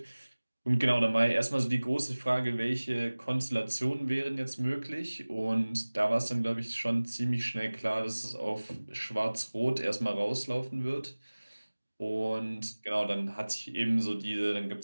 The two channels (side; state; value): both; inverted; correlation -1.00